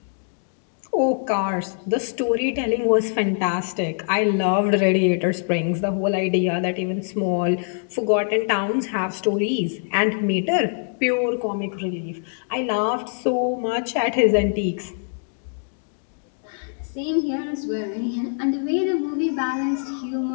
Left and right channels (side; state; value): right; silent; digital silence